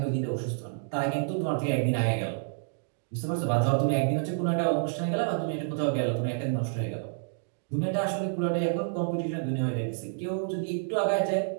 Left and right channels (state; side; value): silent; left; digital silence